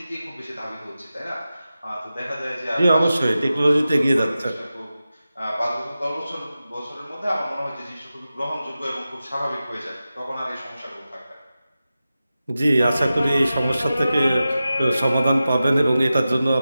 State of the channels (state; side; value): inverted; both; correlation -0.93